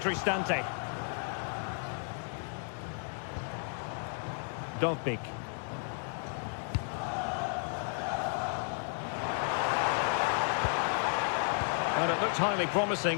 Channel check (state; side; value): silent; right; 56 dB below the other